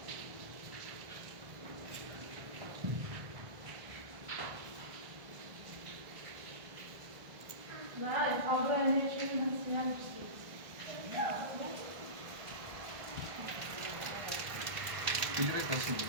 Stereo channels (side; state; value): left; late; 1.5 ms